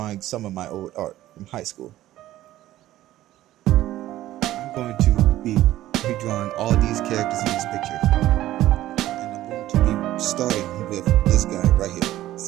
some of my old art from high school. I'm going to be redrawing all these characters in this picture, and I'm going to be starting with this guy right here.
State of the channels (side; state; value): left; quieter; 14.5 dB